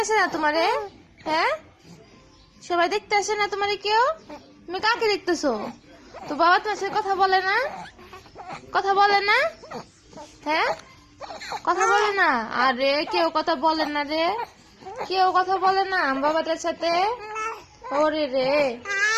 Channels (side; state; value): both; identical; correlation 1.00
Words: আসে না তোমারে? হ্যাঁ, সবাই দেখতে আসে না তোমারে কেউ? তুমি কাকে দেখতেছো? তো বাবা তোমার সাথে কথা বলে না? কথা বলে না? হ্যাঁ, কথা বলে না? আরে কেউ কথা বলে না রে, কেউ কথা বলে না বাবাদের সাথে। ওরে রে,